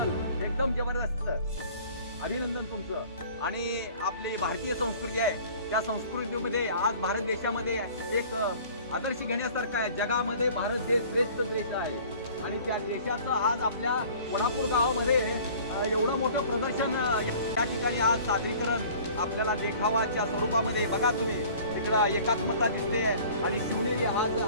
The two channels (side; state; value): both; inverted; correlation -0.48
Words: एकदम जबरदस्त, अभिनंदन तुमचं। आणि आपली भारतीय संस्कृती आहे, त्या संस्कृतीमध्ये आज भारत देशामध्ये एक आदर्श घेण्यासारखा आहे। जगामध्ये भारत देश श्रेष्ठ देश आहे आणि त्या देशाचं आज आपल्या वडापूर गावामध्ये एवढं मोठं प्रदर्शन या ठिकाणी आज सादरीकरण आपल्याला देखावाच्या स्वरूपामध्ये बघा तुम्ही तिकडं एकात्मता दिसते आणि शिवनेरी आज